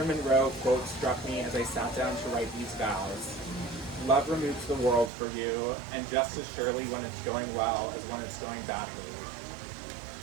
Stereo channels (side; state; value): left; drops out; at 5.1 s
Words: Monroe quote struck me as I sat down to write these vows. Love removes the world for you, and just as surely when it's going well as when it's going badly.